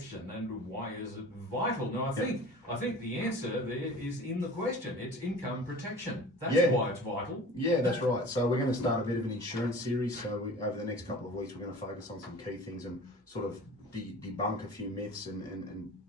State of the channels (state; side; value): normal; both; correlation 0.41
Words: and why is it vital. Now, I think the answer there is in the question. It's income protection. That's why it's vital. Yeah, that's right. So we're going to start a bit of an insurance series. So over the next couple of weeks, we're going to focus on some key things and sort of debunk a few myths and